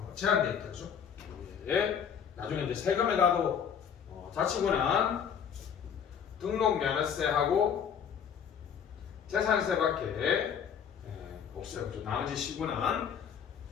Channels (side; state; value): right; quieter; 7.7 dB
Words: 제한되어 있다, 그죠? 예. 나중에 이제 세금에 가도 자치구는 등록 면허세하고 재산세밖에 없어요. 그죠? 나머지 시군은